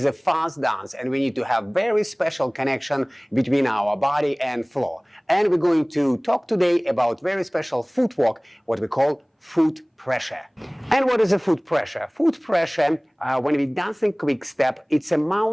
a fast dance, and we need to have very special connection between our body and floor. And we're going to talk today about very special footwork, what we call foot pressure. And what is a foot pressure? Foot pressure, when we dancing quick step, it's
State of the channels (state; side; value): identical; both; correlation 1.00